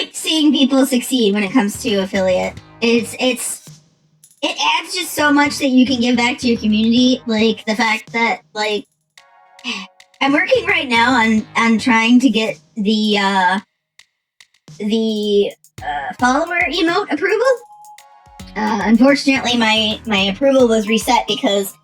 seeing people succeed when it comes to affiliate. It adds just so much that you can give back to your community. Like the fact that, like, I'm working right now on trying to get the follower emote approval. Unfortunately, my approval was reset because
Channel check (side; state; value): both; identical; correlation 1.00